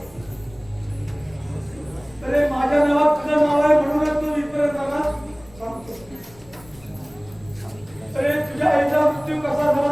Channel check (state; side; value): noise; left; rumble, 24 dB below the sound